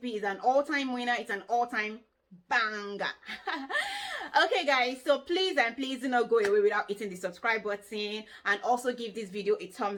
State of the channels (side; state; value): both; identical; correlation 1.00